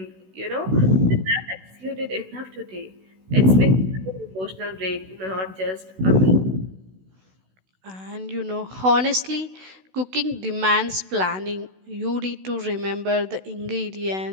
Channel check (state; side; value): late; left; 16 ms